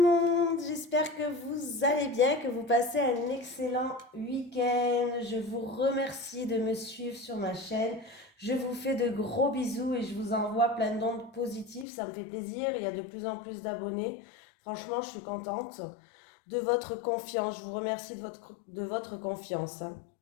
monde, j'espère que vous allez bien, que vous passez un excellent week-end. Je vous remercie de me suivre sur ma chaîne. Je vous fais de gros bisous et je vous envoie plein d'ondes positives. Ça me fait plaisir, il y a de plus en plus d'abonnés. Franchement, je suis contente de votre confiance. Je vous remercie de votre confiance, hein.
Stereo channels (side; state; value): right; drops out; at 11.9 s